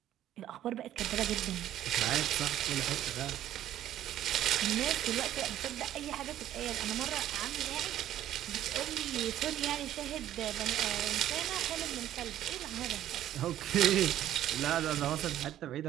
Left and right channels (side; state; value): left; quieter; 12.3 dB